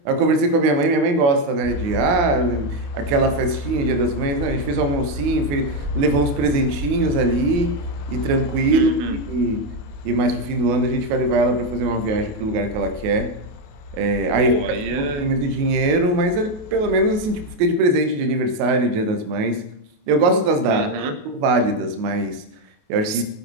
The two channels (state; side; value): late; left; 28 ms